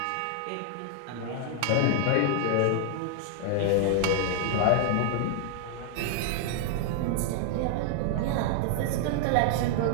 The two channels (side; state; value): both; different; correlation 0.00